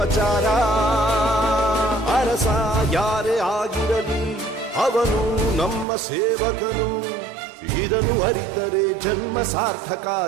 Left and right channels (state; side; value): drops out; left; at 5.9 s